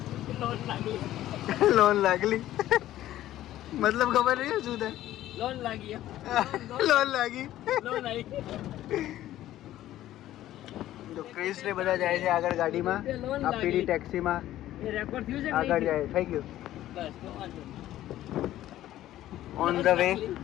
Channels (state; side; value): quieter; right; 13.8 dB